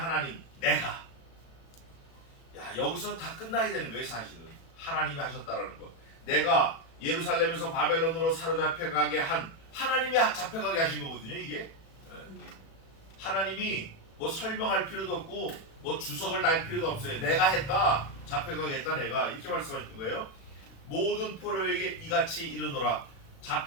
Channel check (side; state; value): right; late; 36 ms